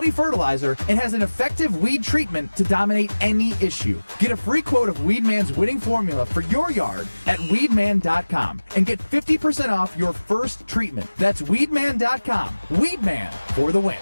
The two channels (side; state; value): both; inverted; correlation -1.00